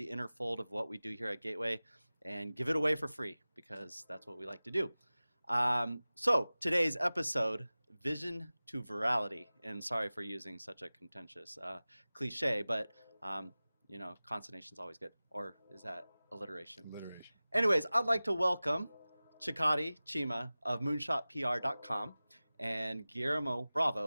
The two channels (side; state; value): both; inverted; correlation -0.98